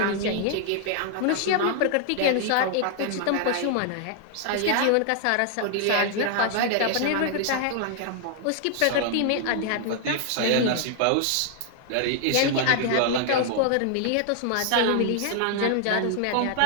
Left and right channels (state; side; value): different; both; correlation 0.00